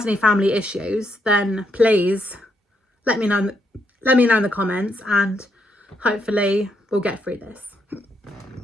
any family issues, then please let me know in the comments, and hopefully we'll get through this.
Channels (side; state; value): both; normal; correlation 0.77